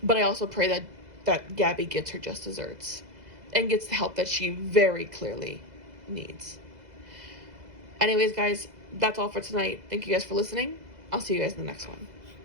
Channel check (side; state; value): left; late; 2.0 ms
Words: But I also pray that Gabby gets her just desserts and gets the help that she very clearly needs. Anyways, guys, that's all for tonight. Thank you guys for listening. I'll see you guys in the next one.